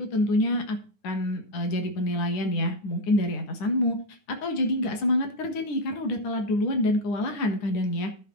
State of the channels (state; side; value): late; right; 9.7 ms